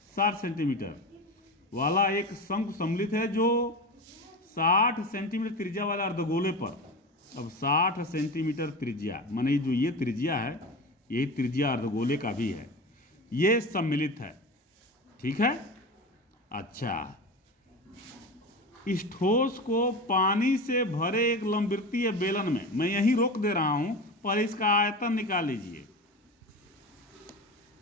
60 सेंटीमीटर वाला एक शंकु सम्मिलित है जो 60 सेंटीमीटर त्रिज्या वाला अर्धगोले पर, अब 60 सेंटीमीटर त्रिज्या माने जो ये त्रिज्या है, यही त्रिज्या अर्धगोले का भी है, ये सम्मिलित है। ठीक है। अच्छा, इस ठोस को पानी से भरे एक लंबवृत्तीय बेलन में, मैं यही रोक दे रहा हूं, पर इसका आयतन निकाल लीजिए।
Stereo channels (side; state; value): both; normal; correlation 0.27